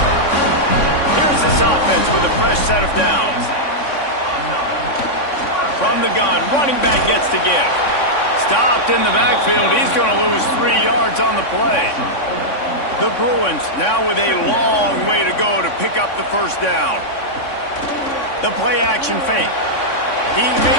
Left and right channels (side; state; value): right; late; 3.6 ms